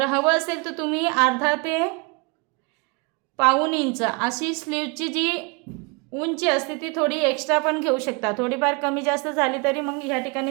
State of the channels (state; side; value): quieter; left; 31.1 dB